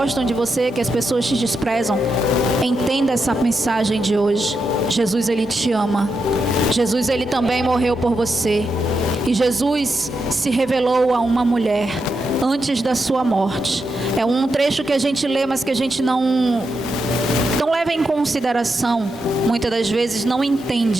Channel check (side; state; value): both; normal; correlation 0.85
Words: de você, que as pessoas te desprezam, entenda essa mensagem de hoje. Jesus, Ele te ama. Jesus, Ele também morreu por você. E Jesus se revelou a uma mulher antes da sua morte. É um trecho que a gente lê, mas que a gente não leva em consideração, muitas das vezes não